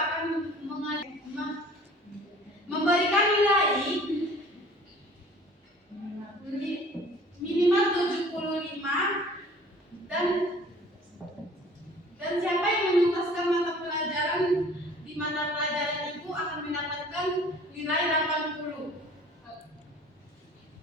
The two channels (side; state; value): both; normal; correlation 0.49